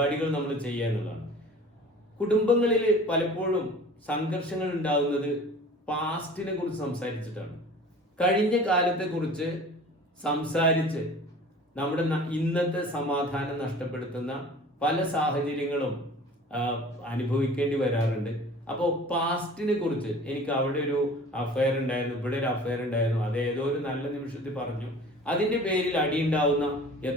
നമ്മൾ ചെയ്യുക എന്നുള്ളതാണ്. കുടുംബങ്ങളിൽ പലപ്പോഴും സംഘർഷങ്ങൾ ഉണ്ടാകുന്നത് പാസ്റ്റിനെ കുറിച്ച് സംസാരിച്ചിട്ടാണ്. കഴിഞ്ഞ കാലത്തെ കുറിച്ച് സംസാരിച്ച് നമ്മുടെ ഇന്നത്തെ സമാധാനം നഷ്ടപ്പെടുത്തുന്ന പല സാഹചര്യങ്ങളും അനുഭവിക്കേണ്ടി വരാറുണ്ട്. അപ്പോൾ പാസ്റ്റിനെ കുറിച്ച്, എനിക്ക് അവിടെ ഒരു അഫയർ ഉണ്ടായിരുന്നു, ഇവിടെ ഒരു അഫയർ ഉണ്ടായിരുന്നു, അത് ഏതോ ഒരു നല്ല നിമിഷത്തിൽ പറഞ്ഞു, അതിന്റെ പേരിൽ അടിയുണ്ടാവുന്ന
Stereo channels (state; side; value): normal; both; correlation 0.44